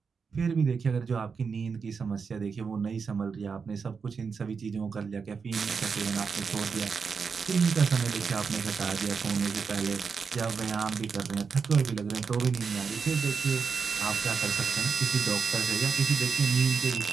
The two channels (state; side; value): quieter; left; 5.6 dB